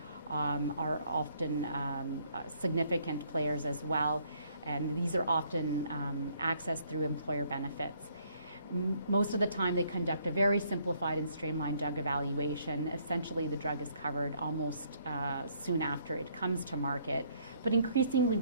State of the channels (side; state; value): both; inverted; correlation -0.67